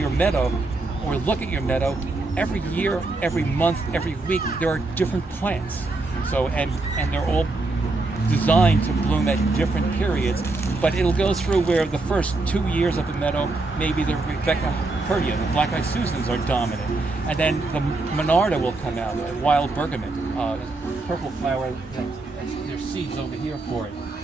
meadow or look at your meadow, every year, every month, every week, there are different plants. So and they're all designed to bloom at different periods, but it'll go through where the first 2 years of the meadow, maybe the Rebecca Herta, the black-eyed Susans are dominant, and then the Monarda will come out, the wild bergamot, purple flower. There's seeds over here for it.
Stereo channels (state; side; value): quieter; left; 3.2 dB